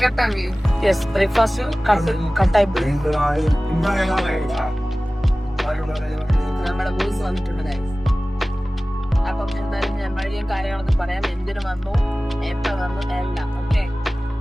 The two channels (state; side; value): normal; both; correlation 0.97